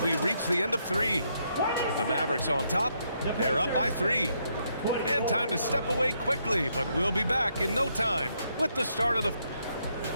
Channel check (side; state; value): both; inverted; correlation -0.75